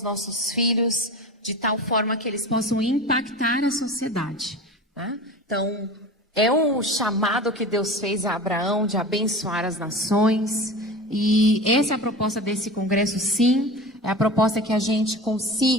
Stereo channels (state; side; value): normal; both; correlation 0.33